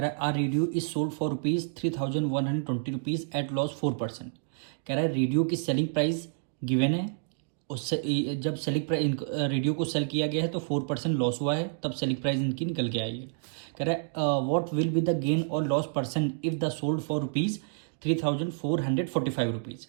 रहा है R radio is sold for ₹3,120 at loss 4%। कह रहा है रेडियो की सेलिंग प्राइस गिवन है, उससे जब सेलिंग प्राइस रेडियो को सेल किया गया है तो 4% लॉस हुआ है, तब सेलिंग प्राइस इनकी निकल के आई है। कह रहा है what will be the gain और loss percent if the sold for ₹3,445।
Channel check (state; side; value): silent; left; digital silence